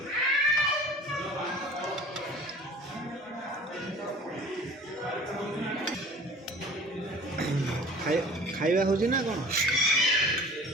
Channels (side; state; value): both; normal; correlation 0.44